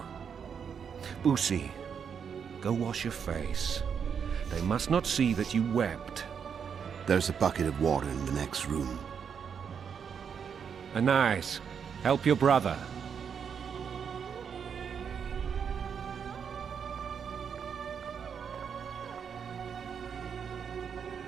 Busi, go wash your face. They must not see that you wept. There's a bucket of water in the next room. Anais, help your brother.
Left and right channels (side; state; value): left; quieter; 7.1 dB